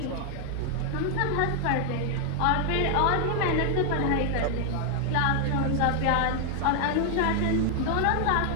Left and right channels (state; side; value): different; both; correlation 0.00